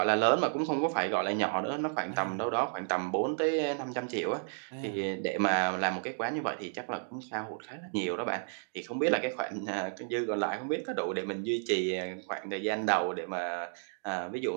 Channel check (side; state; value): left; silent; digital silence